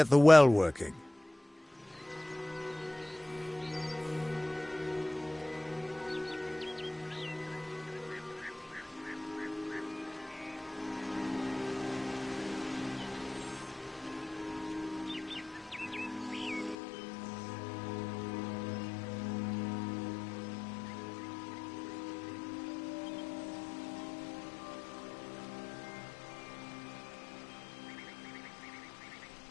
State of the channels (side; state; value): right; drops out; at 16.8 s